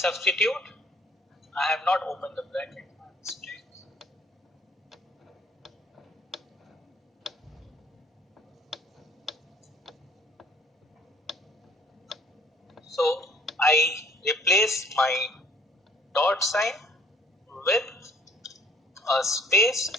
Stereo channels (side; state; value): both; normal; correlation 0.58